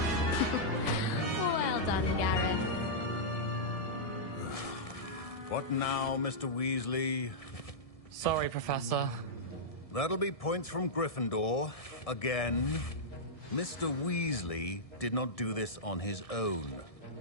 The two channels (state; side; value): late; right; 1.7 ms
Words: Well done, Gareth. What now, Mr. Weasley? Sorry, Professor. That'll be points from Gryffindor. Again. Mr. Weasley did not do this on his own.